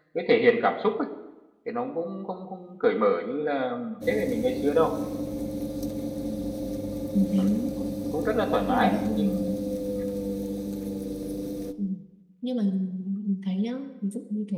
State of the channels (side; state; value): both; identical; correlation 1.00